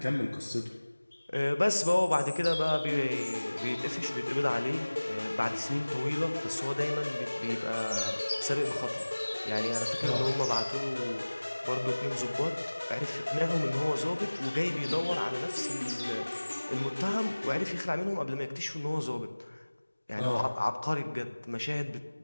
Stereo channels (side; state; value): both; inverted; correlation -1.00